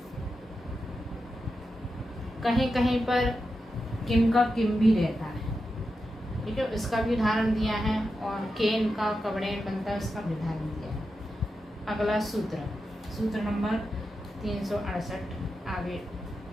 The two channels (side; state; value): both; normal; correlation 0.89